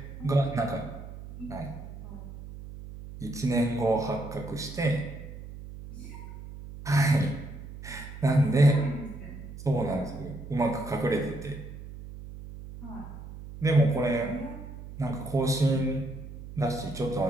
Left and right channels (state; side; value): noise; right; hum, 13 dB below the sound